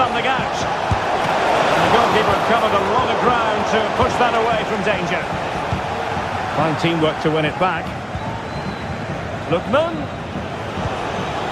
out. The goalkeeper covered a lot of ground to push that away from danger. Fine teamwork to win it back. Lookman.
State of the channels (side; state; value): both; identical; correlation 1.00